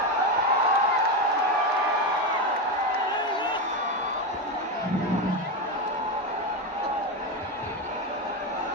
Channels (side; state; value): both; normal; correlation 0.13